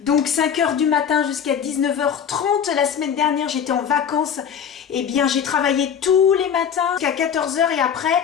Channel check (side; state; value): right; quieter; 7.9 dB